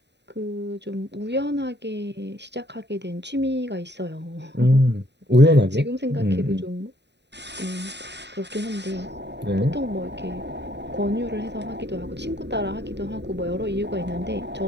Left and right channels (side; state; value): left; late; 0.50 ms